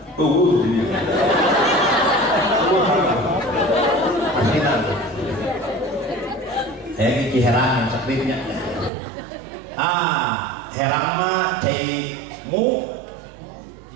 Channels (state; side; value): drops out; left; at 8.9 s